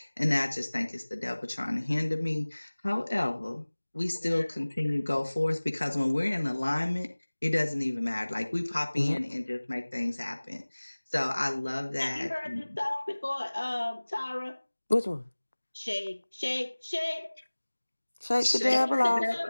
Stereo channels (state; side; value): inverted; both; correlation -1.00